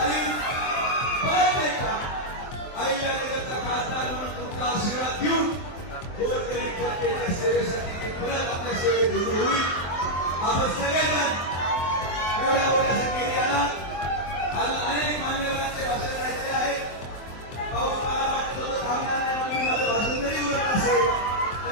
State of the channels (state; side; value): late; right; 23 ms